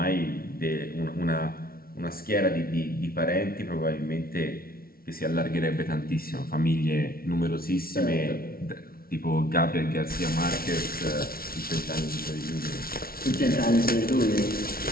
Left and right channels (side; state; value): right; late; 0.43 ms